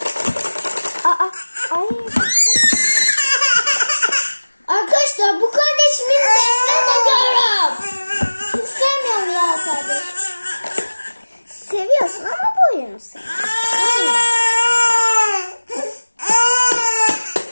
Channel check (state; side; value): inverted; both; correlation -1.00